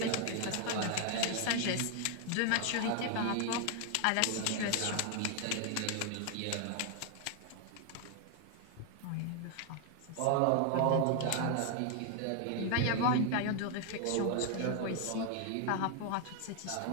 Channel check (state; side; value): different; both; correlation 0.00